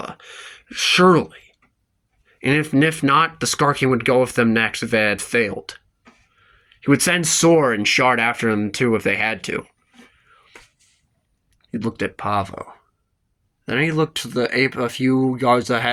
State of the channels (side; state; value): both; identical; correlation 1.00